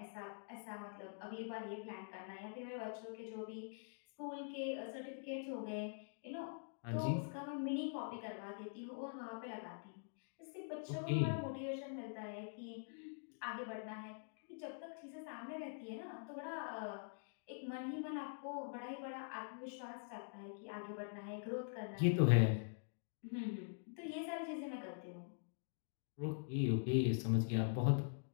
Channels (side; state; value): right; silent; digital silence